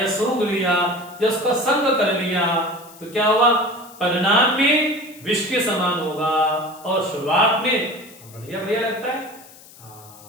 सूंघ लिया या उसका संग कर लिया, तो क्या हुआ? परिणाम में विष के समान होगा और शुरुआत में बढ़िया बढ़िया लगता है।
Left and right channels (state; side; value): noise; left; hiss, 22 dB below the sound